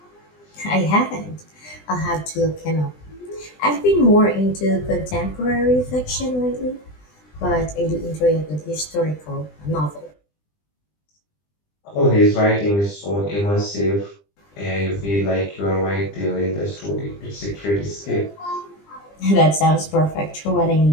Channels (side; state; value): right; late; 20 ms